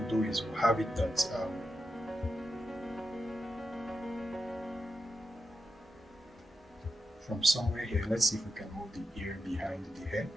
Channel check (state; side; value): normal; both; correlation 0.87